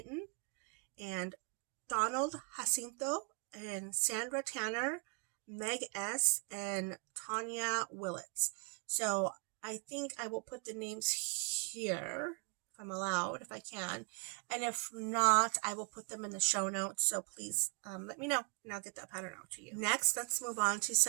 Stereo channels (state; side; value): quieter; left; 36.1 dB